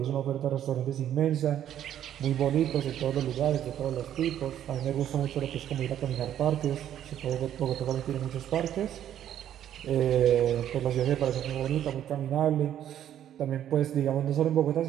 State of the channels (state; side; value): quieter; left; 10.8 dB